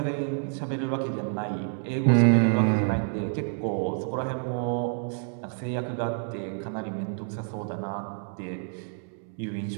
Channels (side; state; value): left; silent; 59 dB below the other